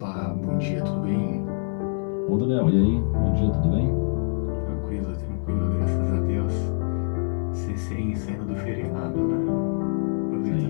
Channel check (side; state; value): right; silent; 60 dB below the other